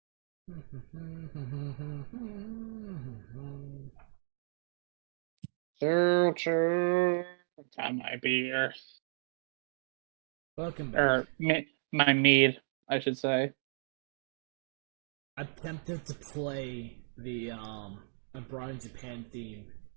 Choo. Time my beer. Welcome back. Or my mead, I should say. I'm tempted to play the Abroad in Japan theme.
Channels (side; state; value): left; silent; digital silence